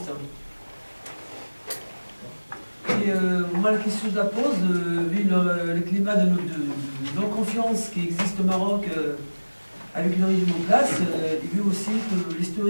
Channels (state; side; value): inverted; both; correlation -1.00